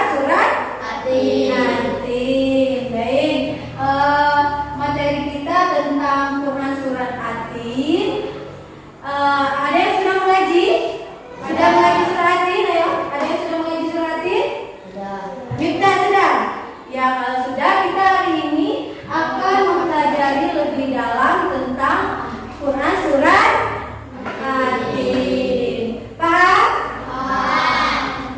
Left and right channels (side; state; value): both; identical; correlation 1.00